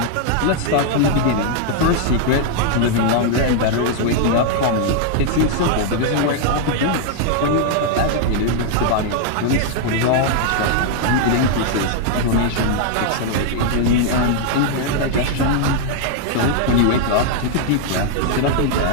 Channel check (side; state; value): both; different; correlation 0.00